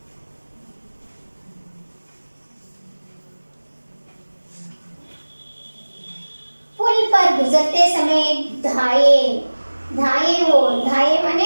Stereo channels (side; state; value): both; inverted; correlation -1.00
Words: पुल पर गुजरते